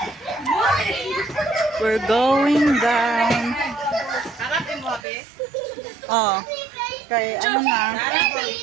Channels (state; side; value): drops out; left; at 5.1 s